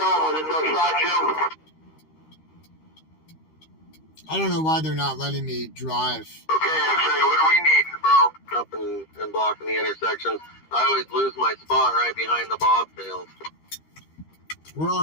with it, no shot, Jim. I don't know why they're not letting me drive. Okay, X-ray, what are we needing, bro? Up and blocking the intersections. I always lose my spot right behind the bobtails. We're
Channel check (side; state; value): right; late; 13 ms